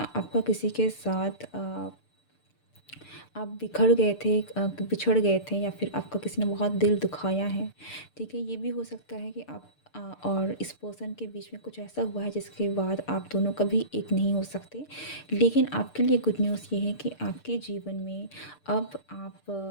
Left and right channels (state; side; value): late; right; 6.7 ms